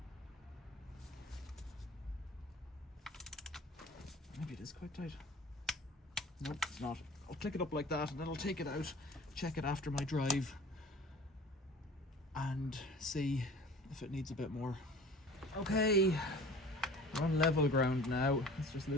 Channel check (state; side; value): normal; both; correlation 0.44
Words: Maybe it is quite tight. Nope, it's not. I'll click it up like that and then I'll take it out, check it after my drive and see if it needs a bit more. Okay, we're on level ground now. Let's just